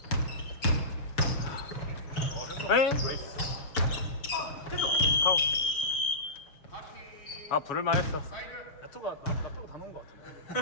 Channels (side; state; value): right; late; 7.2 ms